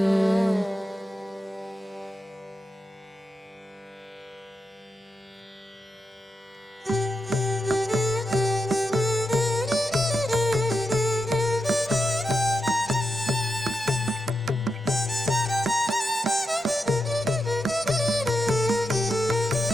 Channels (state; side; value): normal; both; correlation 0.87